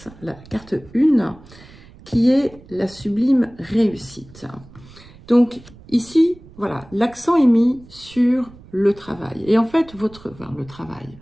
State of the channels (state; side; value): noise; right; rumble, 22 dB below the sound